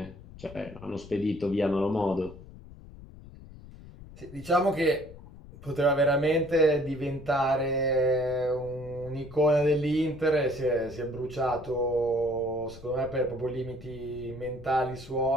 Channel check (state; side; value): noise; left; rumble, 17 dB below the sound